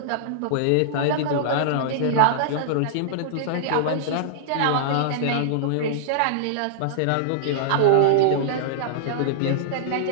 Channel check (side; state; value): both; different; correlation -0.02